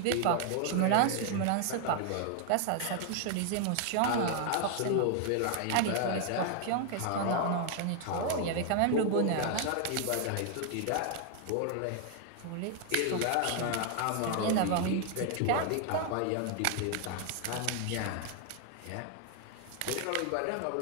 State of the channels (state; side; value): different; both; correlation 0.00